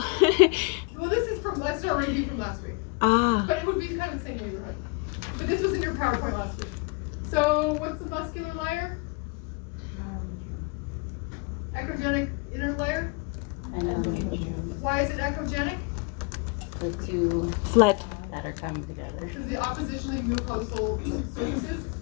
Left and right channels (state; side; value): quieter; right; 29.0 dB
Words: Well, this is from, let's start review from last week. Ah. But it would be kind of the same neighborhood. But this was in your PowerPoint last week. So what's the muscular layer? Echogenic inner layer? Endometrium. Why is it echogenic? The two Flat. that are coming together. Because the oppositionally mucosal surfaces.